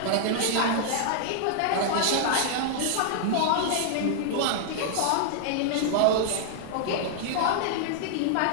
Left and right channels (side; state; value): both; different; correlation -0.01